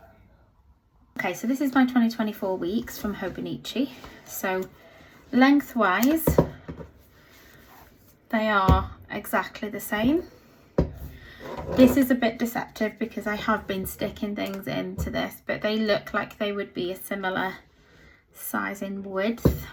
Okay, so this is my 2024 weeks from Hobonichi. So lengthwise they are exactly the same. This is a bit deceptive because I have been sticking things into this, but they look like they would be a similar size in width.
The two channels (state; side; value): identical; both; correlation 1.00